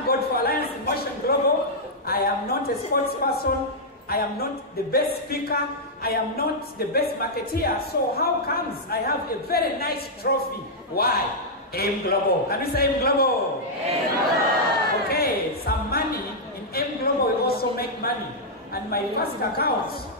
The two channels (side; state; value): both; normal; correlation -0.06